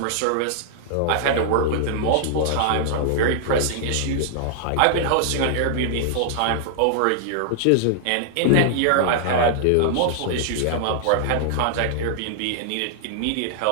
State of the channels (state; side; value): different; both; correlation -0.01